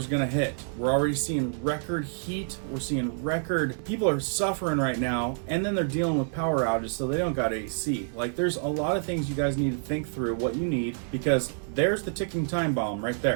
gonna hit. We're already seeing record heat. We're seeing record, people are suffering right now, and then they're dealing with power outages, so they don't got AC. Like, there's a lot of things you guys need to think through what you need, because there's the ticking time bomb right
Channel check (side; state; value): left; silent; 59 dB below the other